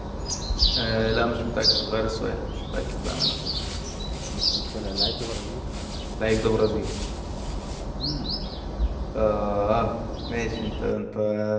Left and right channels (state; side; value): identical; both; correlation 1.00